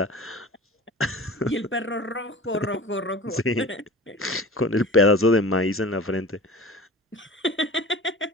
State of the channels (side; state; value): both; normal; correlation 0.38